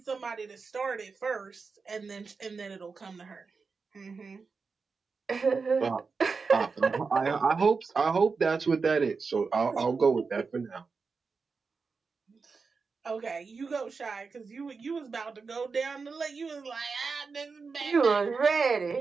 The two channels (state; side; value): quieter; left; 4.8 dB